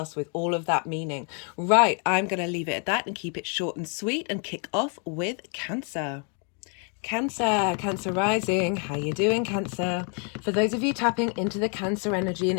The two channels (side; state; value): right; quieter; 39.5 dB